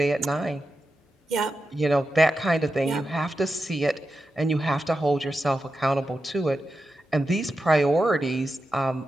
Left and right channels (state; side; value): normal; both; correlation 0.90